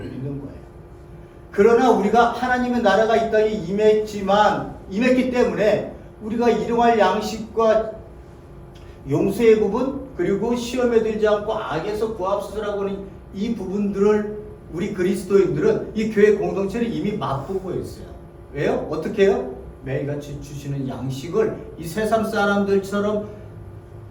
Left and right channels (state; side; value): identical; both; correlation 1.00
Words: 있는 거예요. 그러나 우리가 하나님의 나라가 이 땅에 임했기 때문에 우리가 일용할 양식과 용서의 부분, 그리고 시험에 들지 않고 악에서 구하옵소서라고 하는 이 부분들을 우리 그리스도인들은 이 교회 공동체를 이미 맛보고 있어요. 왜요? 어떻게 해요? 매일같이 주시는 양식을 이 세상 사람들처럼